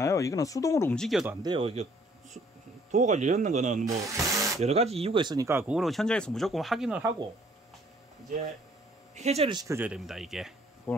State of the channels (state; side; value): normal; both; correlation 0.61